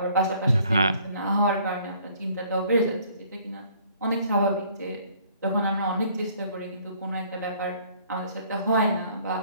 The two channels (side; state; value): both; inverted; correlation -0.59